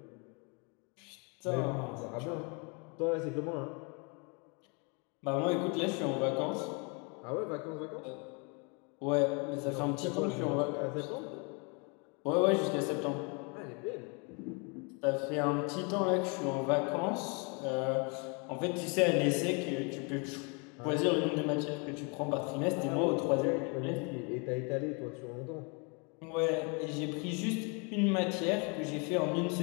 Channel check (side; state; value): right; quieter; 33.6 dB